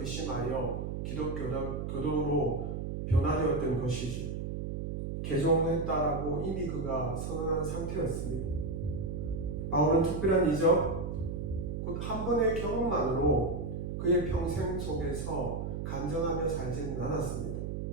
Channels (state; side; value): noise; right; hum, 4 dB below the sound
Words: 기독교도로 변화되었던 것이죠. 개종했다라고 이미 그가 선언한 상태였습니다. 바울은 특별한 이적, 곧 한 번의 경험만으로 그의 평생 속에서 간증하며 살지는 않았습니다.